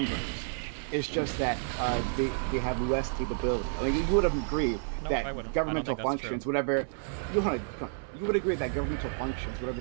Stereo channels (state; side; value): silent; left; 57 dB below the other